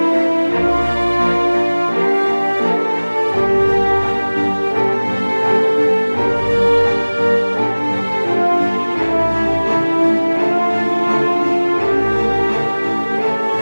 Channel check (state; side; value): inverted; both; correlation -1.00